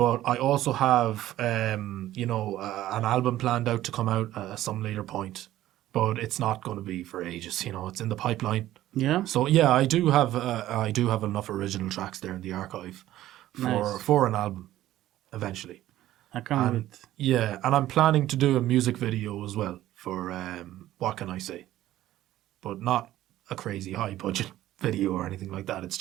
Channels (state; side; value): quieter; left; 14.2 dB